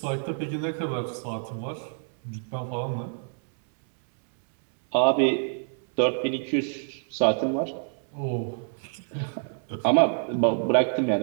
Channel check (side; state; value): left; silent; 60 dB below the other